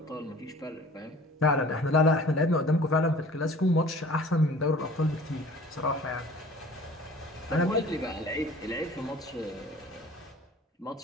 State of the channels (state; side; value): normal; both; correlation 0.47